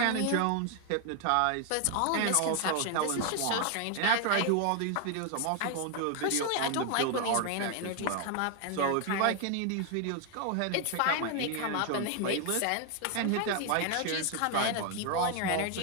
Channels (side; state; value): both; different; correlation 0.01